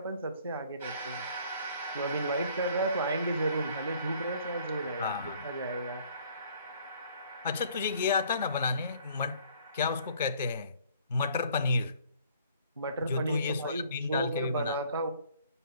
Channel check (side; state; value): both; inverted; correlation -0.58